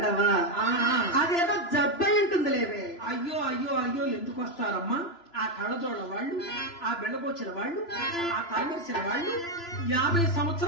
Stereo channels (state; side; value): late; right; 2.9 ms